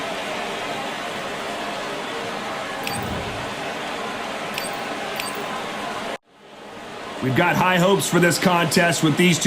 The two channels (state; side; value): identical; both; correlation 1.00